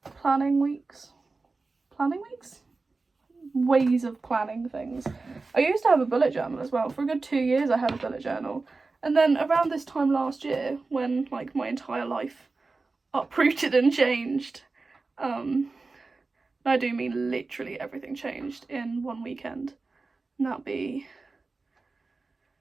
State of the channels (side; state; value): left; quieter; 3.8 dB